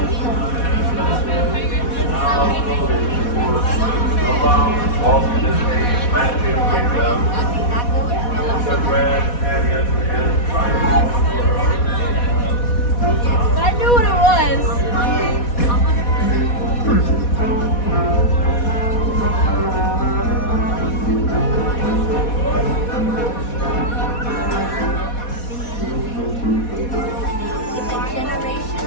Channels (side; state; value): right; late; 4.1 ms